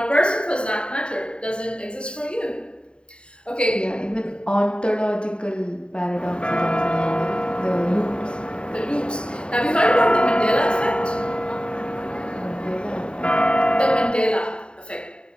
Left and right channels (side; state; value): right; late; 0.052 ms